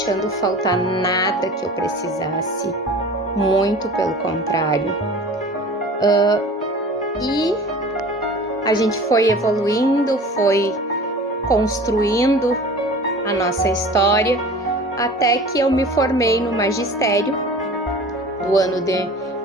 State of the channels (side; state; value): both; normal; correlation 0.40